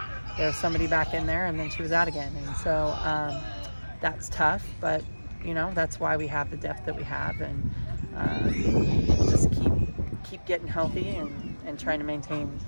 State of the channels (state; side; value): inverted; both; correlation -1.00